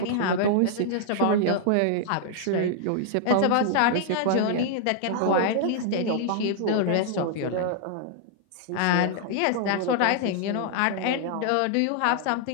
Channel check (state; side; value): different; both; correlation -0.01